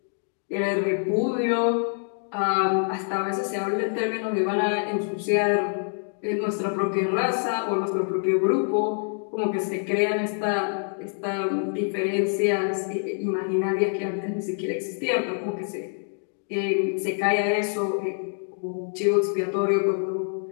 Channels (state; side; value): silent; right; 59 dB below the other